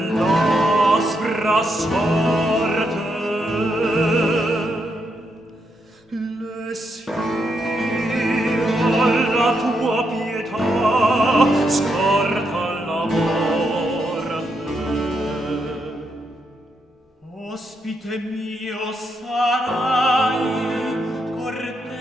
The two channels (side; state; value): both; normal; correlation 0.80